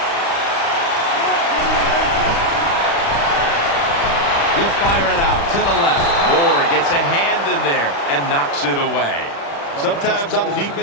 He'll fire it out to the left. Moore gets a hand in there and knocks it away. Sometimes on the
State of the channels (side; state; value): right; late; 35 ms